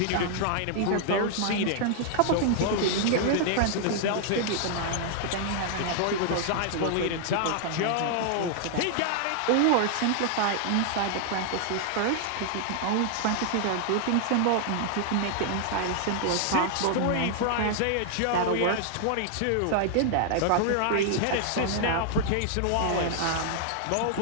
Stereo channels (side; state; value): both; different; correlation 0.00